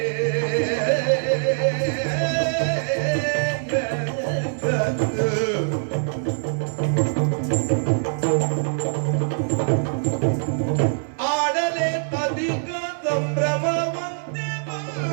ಆಡಲೆ ಅಧಿಕ ಸಂಭ್ರಮವಂತೆ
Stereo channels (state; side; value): silent; left; 60 dB below the other